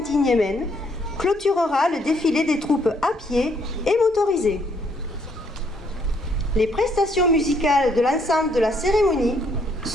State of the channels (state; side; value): normal; both; correlation 0.69